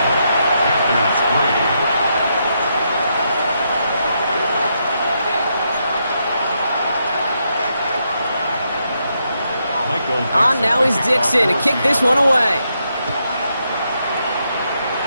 On now is Dixon to kick this one away.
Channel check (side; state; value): both; inverted; correlation -0.80